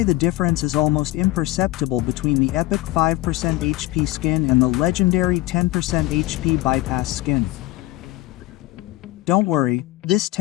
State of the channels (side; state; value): right; quieter; 17.5 dB